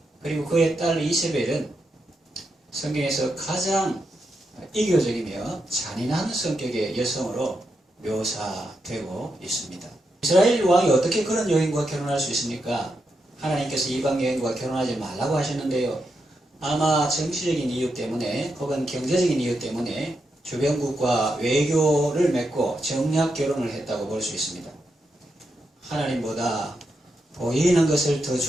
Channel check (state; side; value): normal; both; correlation 0.84